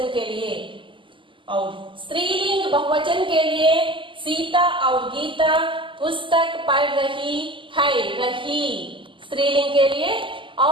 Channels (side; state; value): left; late; 0.25 ms